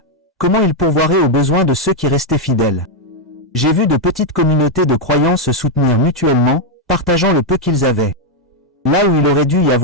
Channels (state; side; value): normal; both; correlation 0.01